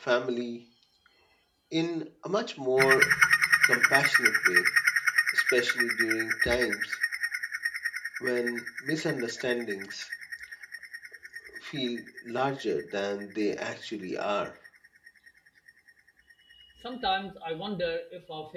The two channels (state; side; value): identical; both; correlation 1.00